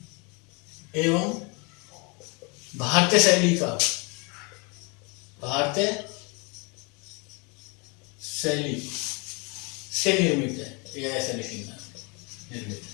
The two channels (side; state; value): right; quieter; 30.8 dB